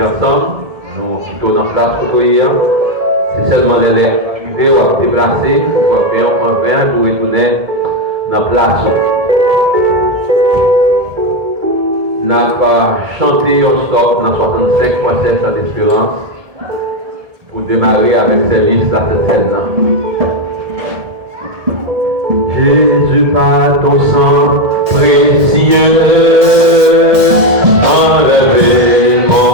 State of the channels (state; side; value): late; left; 1.7 ms